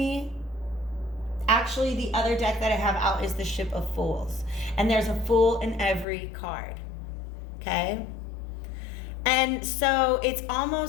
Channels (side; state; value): right; drops out; at 6.1 s